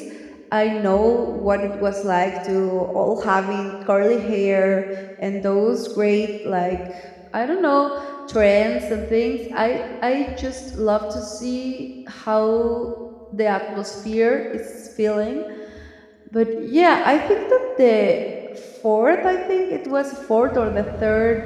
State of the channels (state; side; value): identical; both; correlation 1.00